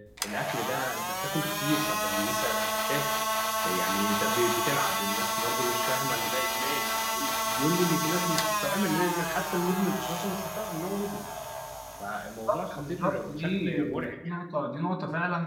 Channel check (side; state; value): both; identical; correlation 1.00